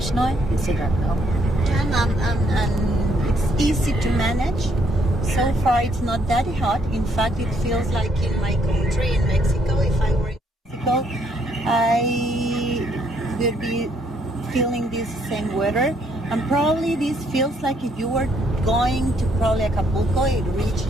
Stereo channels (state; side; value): normal; both; correlation 0.70